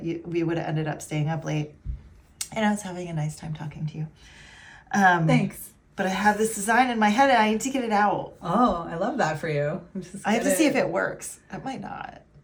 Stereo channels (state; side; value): identical; both; correlation 1.00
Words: we would have ended up staying up late, and I was having a nice time talking to you. Thanks. But I have this design in my head, and I need to get it out. Oh, I love that for you. I have to see if it works. It might not.